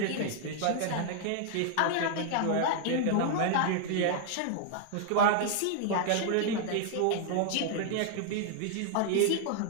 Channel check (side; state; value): both; different; correlation 0.00